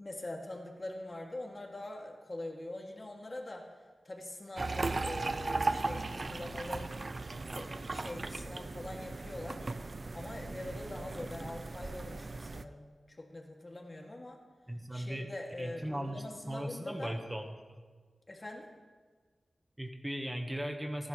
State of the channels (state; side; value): normal; both; correlation 0.96